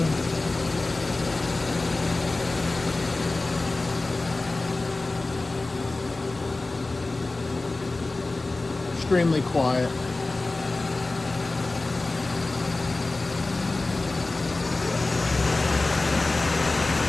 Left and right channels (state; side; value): quieter; right; 3.2 dB